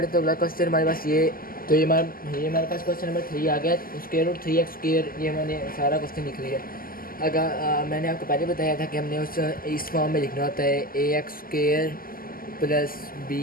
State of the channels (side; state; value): right; late; 0.42 ms